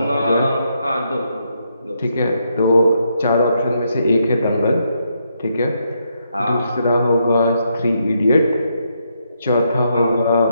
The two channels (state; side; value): inverted; both; correlation -0.78